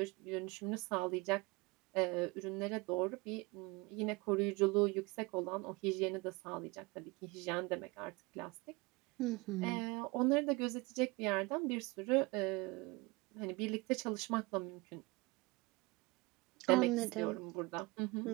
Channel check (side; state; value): left; quieter; 24.7 dB